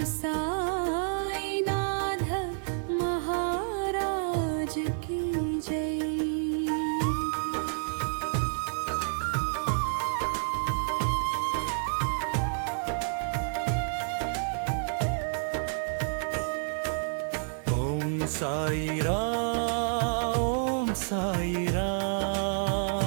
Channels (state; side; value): silent; left; 58 dB below the other